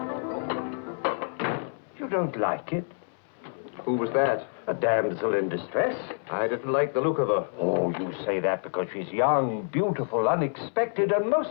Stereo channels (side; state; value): right; silent; 60 dB below the other